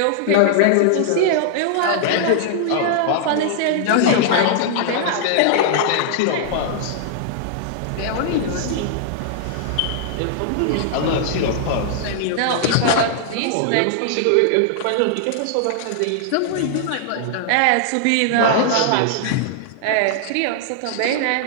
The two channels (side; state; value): both; different; correlation -0.01